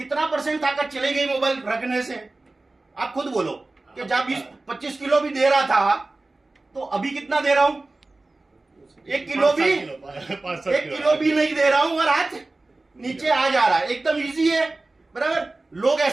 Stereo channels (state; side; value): quieter; left; 3.1 dB